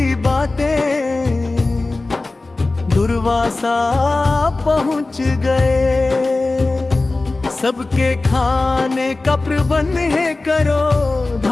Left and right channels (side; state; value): right; quieter; 3.2 dB